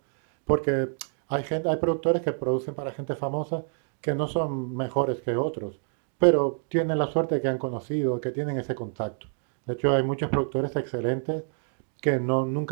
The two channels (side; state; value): left; silent; digital silence